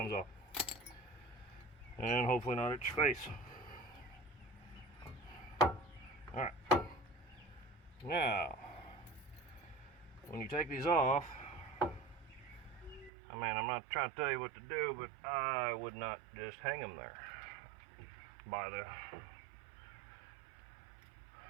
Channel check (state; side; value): drops out; left; at 13.1 s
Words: off. And hopefully not at your face. Alright. Now, when you take these off, I mean, I'm not trying to tell you what to do, but I would not just hang them there by the